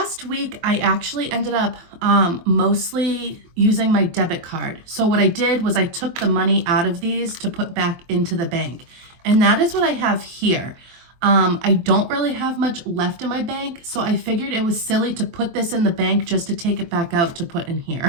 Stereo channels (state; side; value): late; left; 23 ms